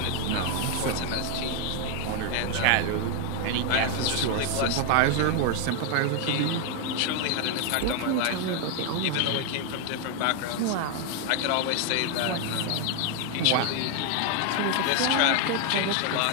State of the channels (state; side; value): different; both; correlation 0.00